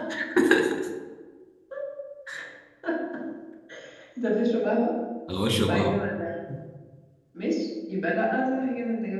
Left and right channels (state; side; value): identical; both; correlation 1.00